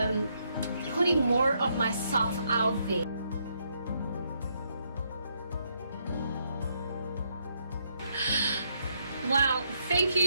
putting more of myself out there. Wow, thank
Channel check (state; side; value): inverted; both; correlation -0.75